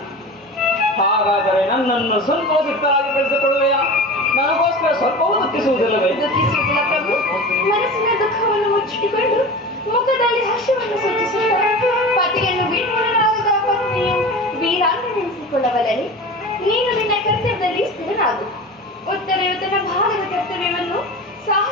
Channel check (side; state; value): both; normal; correlation 0.33